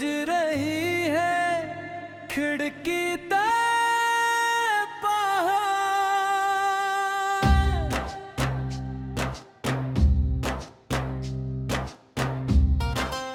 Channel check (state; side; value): identical; both; correlation 1.00